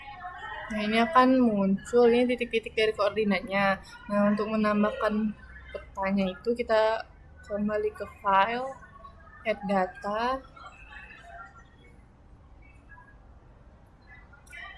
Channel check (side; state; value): both; identical; correlation 1.00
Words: Nah, ini akan muncul ini titik-titik dari koordinatnya. Nah, untuk menambahkan petanya itu kita kembali ke file, add data,